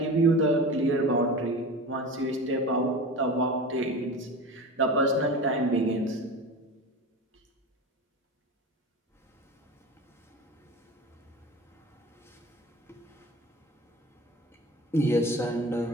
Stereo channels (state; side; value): normal; both; correlation 0.32